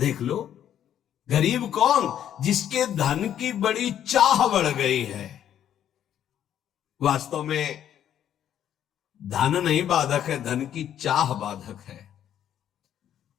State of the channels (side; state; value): right; quieter; 10.3 dB